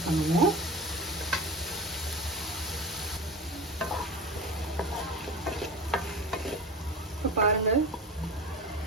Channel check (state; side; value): normal; both; correlation 0.32